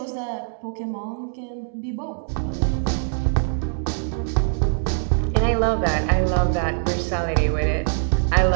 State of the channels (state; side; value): silent; left; digital silence